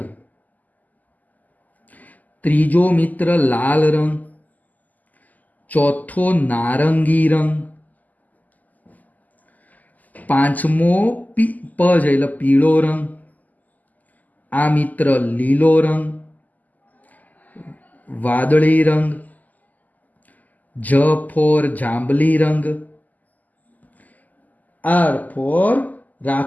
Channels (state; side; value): late; right; 0.080 ms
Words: ત્રીજો મિત્ર લાલ રંગ, ચોથો નારંગી રંગ, પાંચમો પ છે એટલે પીળો રંગ, આ મિત્ર લીલો રંગ, વાદળી રંગ, જ ફોર જાંબલી રંગ, આર ફોર